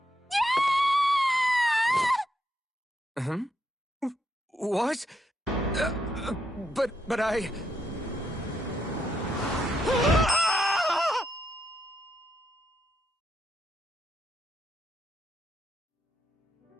Hmm? What? But I...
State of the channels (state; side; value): normal; both; correlation 0.79